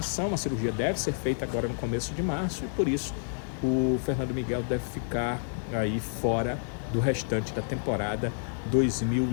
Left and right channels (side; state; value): right; silent; digital silence